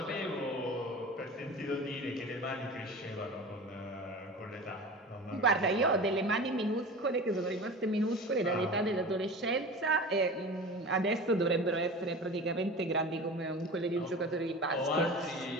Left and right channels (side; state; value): both; normal; correlation 0.34